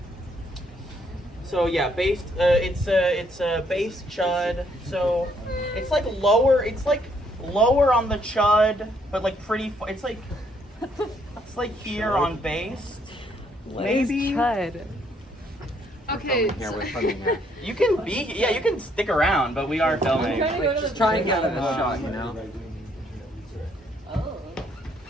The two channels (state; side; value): normal; both; correlation 0.69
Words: So yeah, based. It's based chud. So it's like lower. It's like lower on the chud, but like pretty. It's like here on based. Maybe. Chud. Okay. Here, we're filming here. You can be. Yeah, you can stick around, but we are filming. Just try and get a shot, you know.